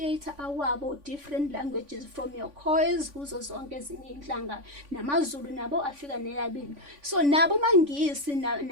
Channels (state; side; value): late; left; 3.5 ms